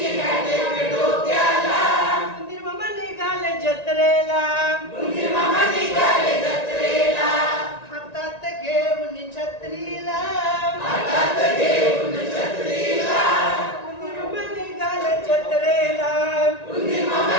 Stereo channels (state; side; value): late; right; 1.9 ms